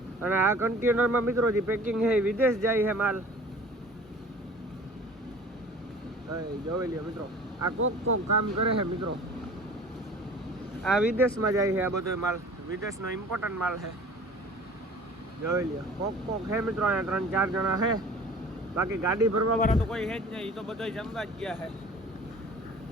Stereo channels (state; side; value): normal; both; correlation 0.44